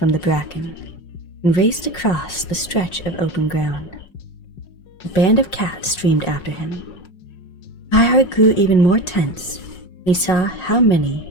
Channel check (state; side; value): late; right; 5.5 ms